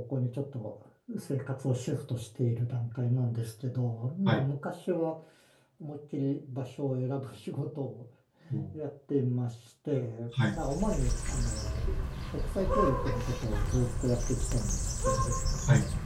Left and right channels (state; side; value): identical; both; correlation 1.00